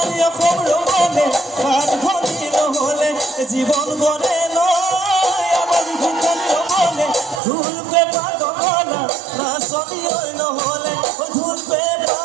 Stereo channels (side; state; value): left; drops out; at 7.4 s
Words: খবর বনে হাত ঘটি নহলে জীবন বনে নয় আমার ঘুটানি বনে ধুলপে পাগলা নাচনি ওই নহলে ধুলপে